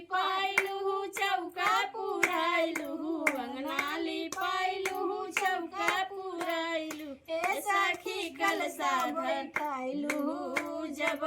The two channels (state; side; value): identical; both; correlation 1.00